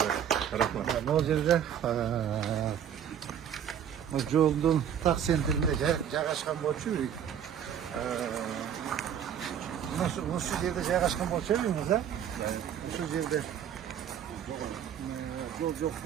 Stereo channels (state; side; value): quieter; left; 9.0 dB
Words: Рахмат. Могул жерде жолдун так центринде жайгашкан болчу үй. Ушул жерде жайгашкан болчу үйүңүз, да? Ушул жерде жол жок